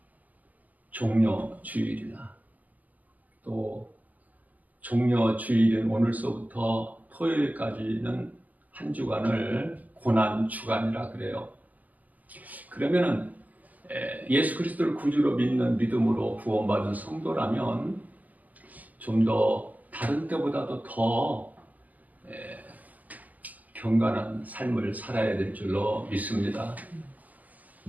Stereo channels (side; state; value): left; late; 0.080 ms